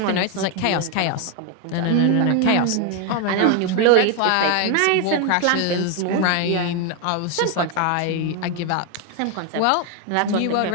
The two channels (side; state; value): both; different; correlation 0.01